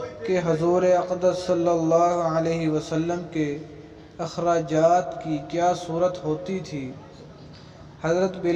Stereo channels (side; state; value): both; identical; correlation 1.00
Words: کہ حضور اقدس صلی اللہ علیہ وسلم کے اخراجات کی کیا صورت ہوتی تھی؟ حضرت